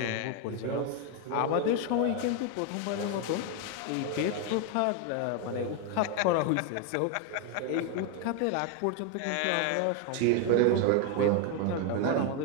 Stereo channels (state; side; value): different; both; correlation 0.01